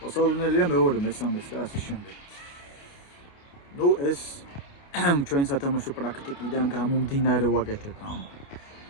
მოსალოდნელია მეორე, მესამეც და ასე შემდეგ. ნუ ეს ჩვენ სათამაშო პრაქტიკიდან გამომდინარე ვაკეთებ ამ.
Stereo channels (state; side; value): late; right; 28 ms